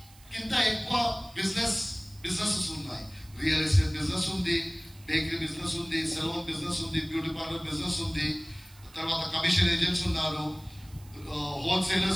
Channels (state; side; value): noise; right; hiss, 25 dB below the sound